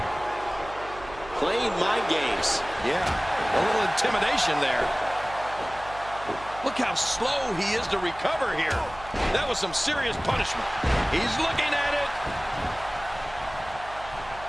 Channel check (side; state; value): right; noise; hum, 17 dB below the sound